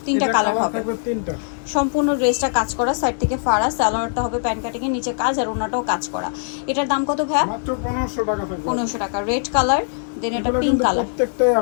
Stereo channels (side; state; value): right; silent; digital silence